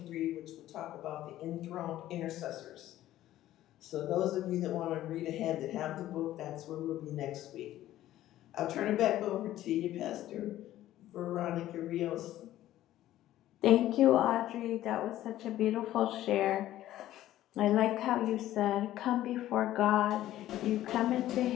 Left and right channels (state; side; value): quieter; right; 13.8 dB